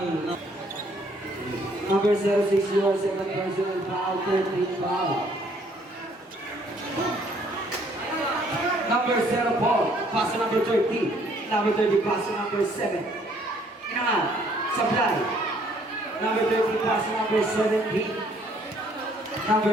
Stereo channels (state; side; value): normal; both; correlation 0.63